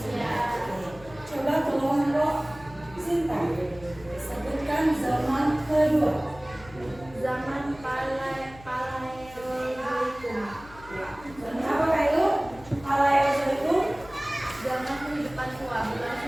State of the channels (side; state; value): left; noise; hum, 20 dB below the sound